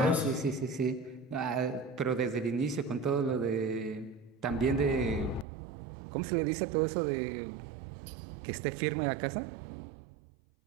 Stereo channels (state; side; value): drops out; left; at 5.5 s